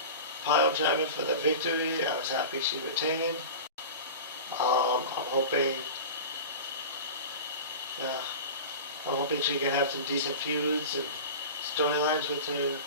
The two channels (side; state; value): both; inverted; correlation -0.32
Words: pile driver for the victory. I was happy she retained. I'm hoping she can have some decent feuds and storylines with her